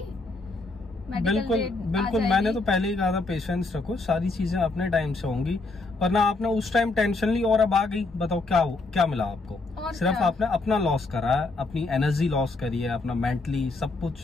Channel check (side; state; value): right; quieter; 3.4 dB